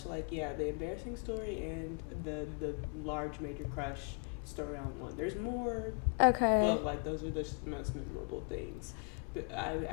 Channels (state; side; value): quieter; right; 37.9 dB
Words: like the embarrassing story and the large major crush story on one. There's more. Okay. But like those are just the most memorable things. But